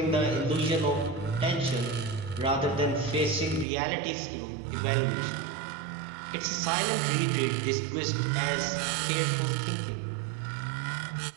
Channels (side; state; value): left; drops out; at 3.7 s